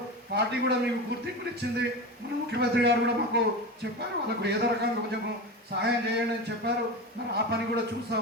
పార్టీ కూడా మీకు గుర్తింపుని ఇచ్చింది. మన ముఖ్యమంత్రి గారు కూడా మాకు చెప్పారు, వాళ్ళకు ఏదో రకంగా కొంచెం సహాయం చేయండి అని చెప్పారు. మరి ఆ పని కూడా చూస్తూ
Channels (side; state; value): both; normal; correlation 0.25